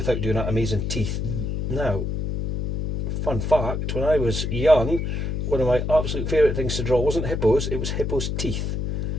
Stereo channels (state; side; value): noise; left; hum, 2 dB below the sound